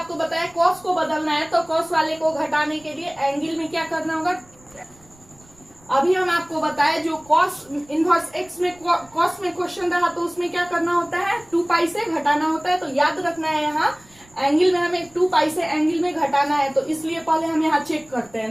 बताया कॉस को बदलना है, तो कॉस वाले को घटाने के लिए एंगल में क्या करना होगा। अभी हम आपको बताए जो कॉस इनवर्स एक्स में कॉस में क्वेश्चन रहा तो उसमें क्या करना होता है, 2 पाई से घटाना होता है। तो याद रखना है, यहाँ एंगल में हमें 2 पाई से एंगल में घटाना है। तो इसलिए पहले हम यहाँ चेक करते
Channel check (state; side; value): noise; right; rumble, 28 dB below the sound